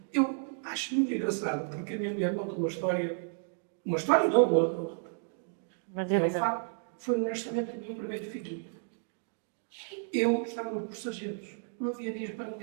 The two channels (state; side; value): silent; left; digital silence